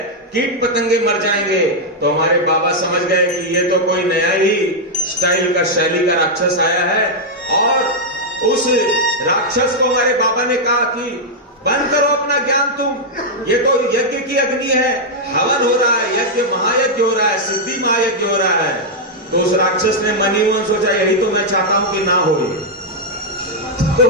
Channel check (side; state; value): both; normal; correlation -0.03